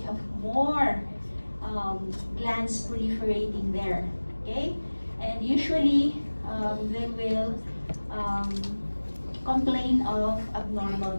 have more glands proliferating there. Okay? And usually, they will complain of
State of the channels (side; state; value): both; inverted; correlation -1.00